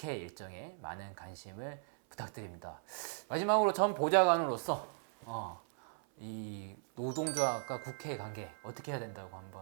일정에 많은 관심을 부탁드립니다. 마지막으로 전 보좌관으로서 이 노동조합과 국회의 관계 어떻게 해야 된다고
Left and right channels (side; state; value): left; silent; 53 dB below the other